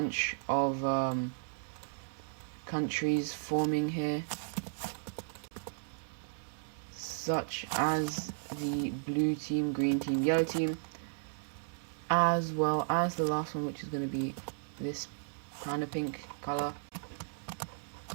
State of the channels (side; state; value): left; silent; digital silence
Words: of countries forming here, such as the blue team, green team, yellow team, as well as the last one, which is going to be this kind of pink color.